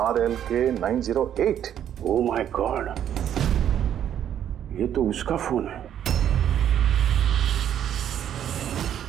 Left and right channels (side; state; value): left; quieter; 10.0 dB